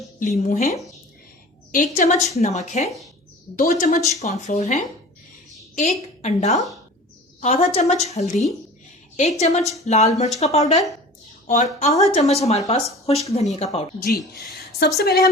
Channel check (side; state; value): both; normal; correlation 0.40